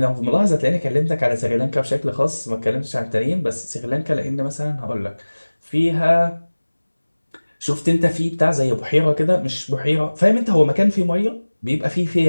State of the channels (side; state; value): both; inverted; correlation -1.00